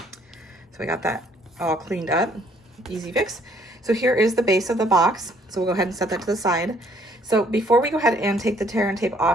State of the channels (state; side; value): normal; both; correlation 0.64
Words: we got that all cleaned up, easy fix. So here is the base of the box. So we'll go ahead and set that to the side. So before we go ahead and take the tear and tape